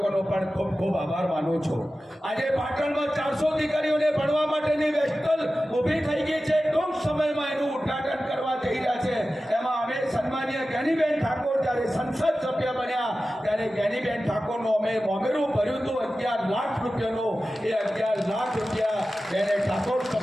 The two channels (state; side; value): normal; both; correlation 0.94